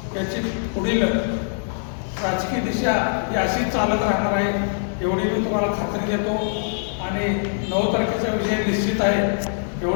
याची पुढील राजकीय दिशा ही अशीच चालत राहणार आहे एवढी मी तुम्हाला खात्री देतो। आणि 9 तारखेचा विजय निश्चित आहे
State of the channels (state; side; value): silent; right; digital silence